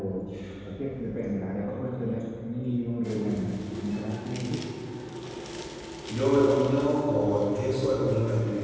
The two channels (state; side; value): identical; both; correlation 1.00